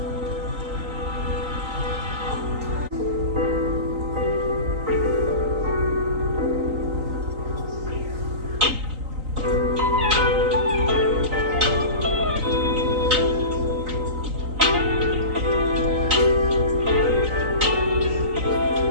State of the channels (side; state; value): left; late; 3.9 ms